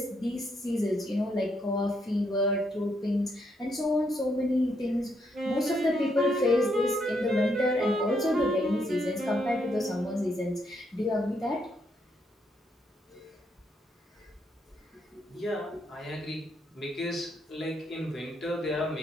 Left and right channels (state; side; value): normal; both; correlation 0.76